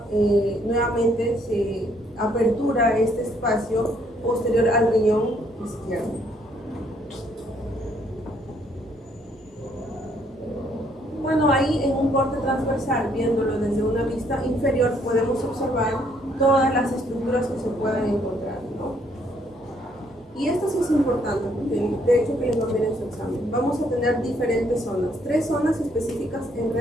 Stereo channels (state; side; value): normal; both; correlation 0.68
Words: nuevamente se apertura este espacio posterior al riñón izquierdo. Bueno, ahí en un corte transversal, viéndolo desde una vista inferior, podemos observar todas las estructuras que se pueden encontrar, ¿no? Y esto sí es importante, porque de hecho que les va a ver en su examen. Vamos a tener diferentes zonas, 3 zonas específicas en